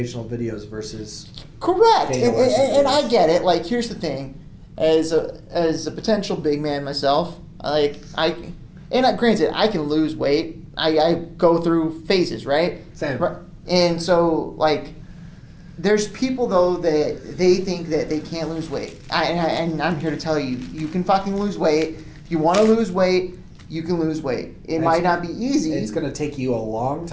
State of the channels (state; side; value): identical; both; correlation 1.00